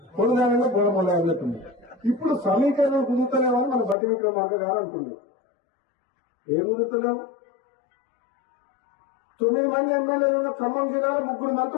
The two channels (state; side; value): drops out; right; at 4.0 s